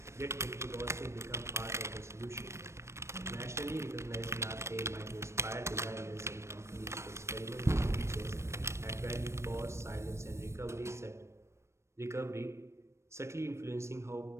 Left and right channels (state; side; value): late; left; 0.13 ms